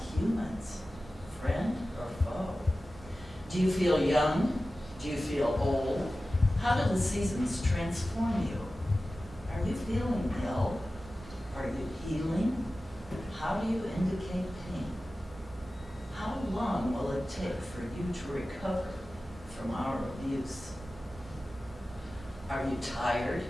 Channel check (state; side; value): normal; both; correlation 0.95